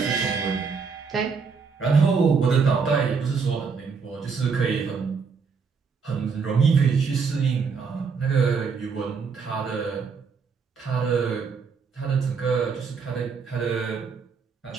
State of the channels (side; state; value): left; quieter; 5.4 dB